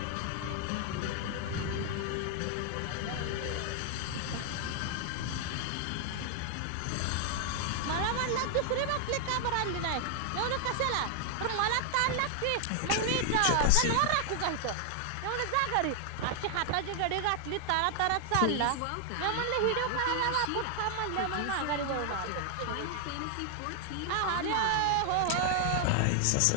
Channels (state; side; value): different; both; correlation 0.00